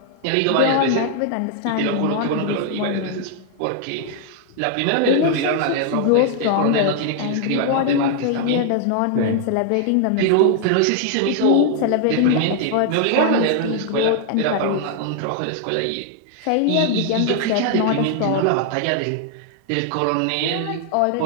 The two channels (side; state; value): both; different; correlation 0.00